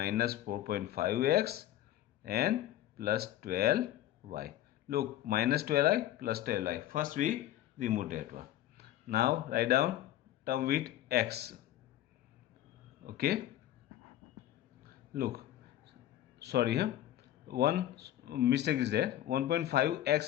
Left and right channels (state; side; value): quieter; right; 13.2 dB